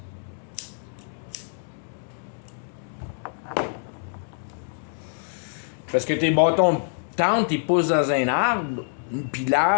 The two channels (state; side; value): silent; right; digital silence